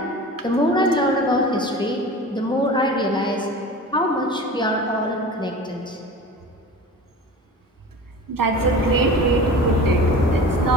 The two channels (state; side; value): normal; both; correlation 0.37